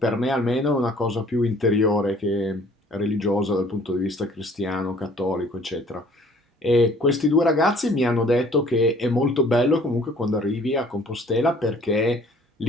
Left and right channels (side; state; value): both; normal; correlation 0.55